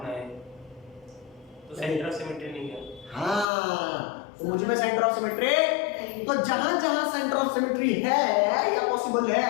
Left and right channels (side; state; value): right; drops out; at 3.5 s